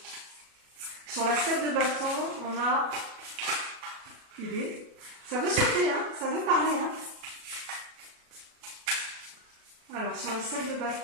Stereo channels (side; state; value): left; late; 37 ms